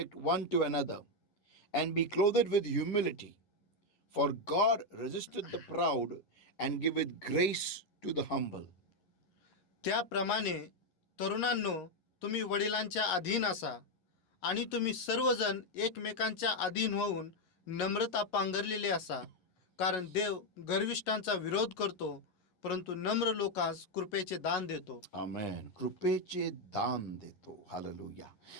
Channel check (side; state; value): right; late; 11 ms